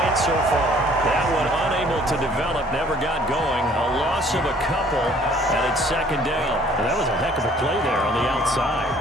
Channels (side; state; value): both; normal; correlation 0.57